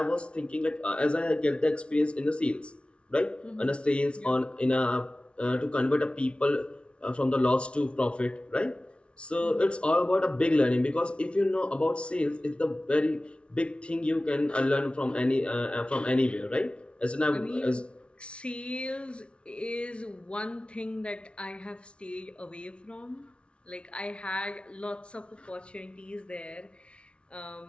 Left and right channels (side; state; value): right; late; 0.059 ms